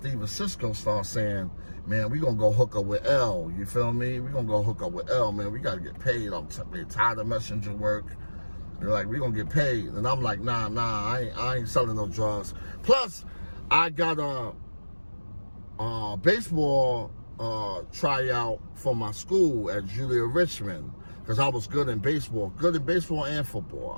and Cisco start saying, man, we gonna go hook up with L, you feel me? We gonna go hook up with L, man, we gotta get paid. I'm tired of messenger work. They're like, we gonna get paid. And I'm like, nah, I ain't selling no drugs. Plus, I got a baseball tryout for my school at Julia Richmond, because I was good in baseball and football.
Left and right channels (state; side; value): inverted; both; correlation -1.00